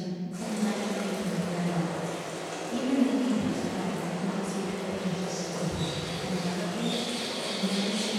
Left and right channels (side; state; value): both; identical; correlation 1.00